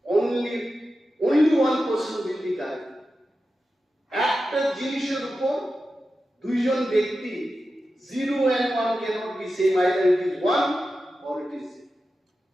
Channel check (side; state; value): both; normal; correlation 0.92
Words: only one person will be correct. একটা জিনিসের উপর দুইজন ব্যক্তি 0 and 1 cannot be same, either it is 1 or it is 0,